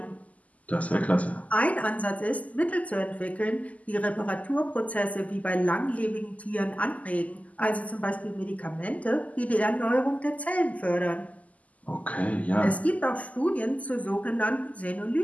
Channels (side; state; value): right; late; 0.073 ms